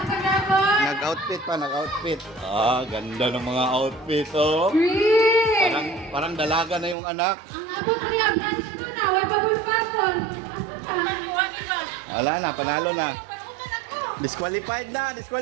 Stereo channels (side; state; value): left; drops out; at 7.0 s